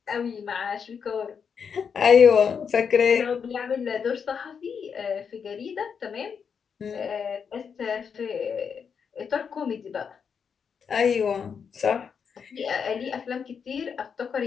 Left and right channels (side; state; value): right; quieter; 6.6 dB